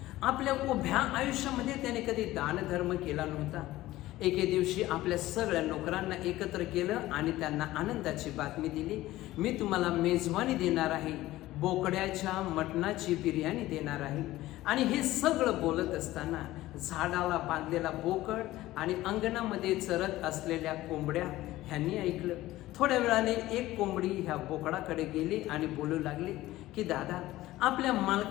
आपल्या उभ्या आयुष्यामध्ये त्याने कधी दानधर्म केला नव्हता. एके दिवशी आपल्या सगळ्या नोकरांना एकत्र केलं आणि त्यांना आनंदाची बातमी दिली, मी तुम्हाला मेजवानी देणार आहे, बोकड्याच्या मटणाची बिर्याणी देणार आहे. आणि हे सगळं बोलत असताना झाडाला बांधलेला बोकड आणि अंगणामध्ये चरत असलेल्या कोंबड्या ह्यांनी ऐकलं. थोड्या वेळाने एक कोंबडी ह्या बोकडाकडे गेली आणि बोलू लागली की दादा, आपल्या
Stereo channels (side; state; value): right; quieter; 16.5 dB